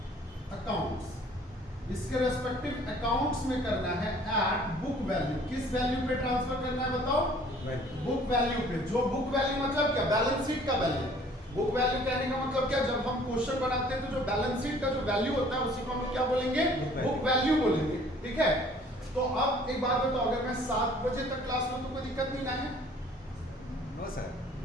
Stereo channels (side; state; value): both; normal; correlation 0.54